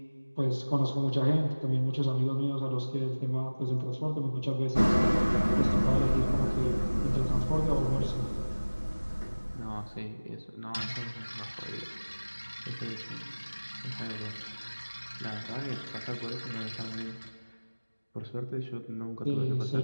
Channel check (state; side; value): inverted; both; correlation -1.00